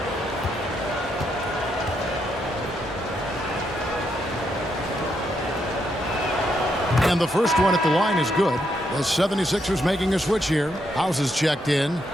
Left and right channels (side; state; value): both; normal; correlation 0.78